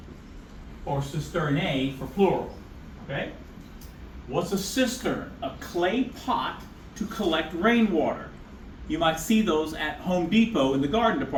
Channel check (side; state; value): both; identical; correlation 1.00